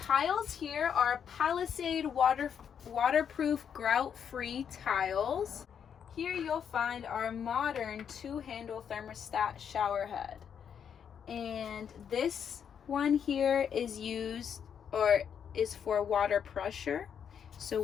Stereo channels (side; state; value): right; quieter; 7.8 dB